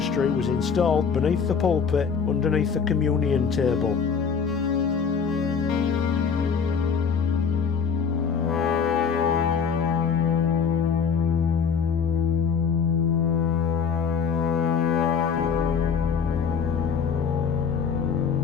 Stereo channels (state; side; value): quieter; right; 6.3 dB